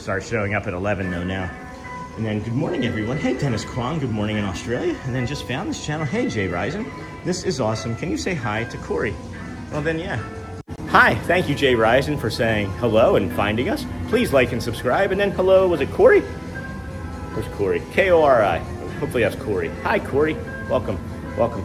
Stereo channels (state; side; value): identical; both; correlation 1.00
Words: start showing up at 11 though now. And then good morning, everyone. Hey, Dennis Kwong, good morning in Australia. And then just found this channel. Hey, Jay Risen. This is awesome. Can you say hi to Corey? Well then, yeah. Hi, thank you, Jay Risen, for saying hello and finding us. Please like and subscribe. And then hello, was it Corey? Where's Corey? K-O-R-I. Hopefully that's Corey. Hi, Corey. Welcome. Welcome,